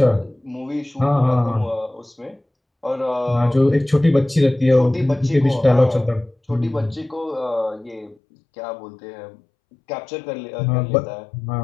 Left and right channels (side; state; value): right; drops out; at 8.2 s